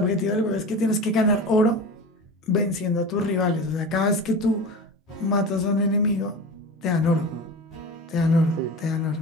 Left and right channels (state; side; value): normal; both; correlation 0.32